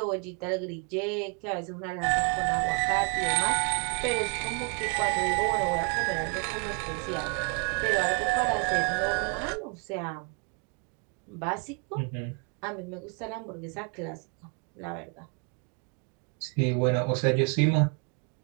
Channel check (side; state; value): left; quieter; 37.5 dB